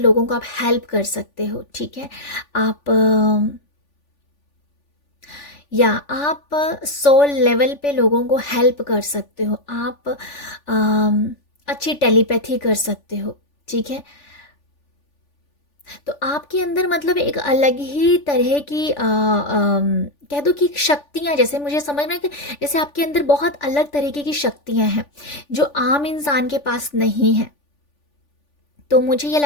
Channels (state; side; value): late; right; 3.4 ms